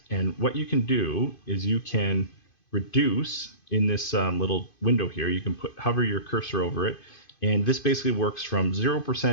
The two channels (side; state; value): right; late; 2.5 ms